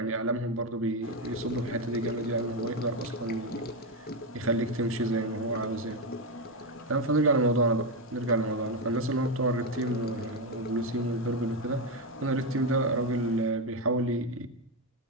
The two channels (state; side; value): normal; both; correlation 0.08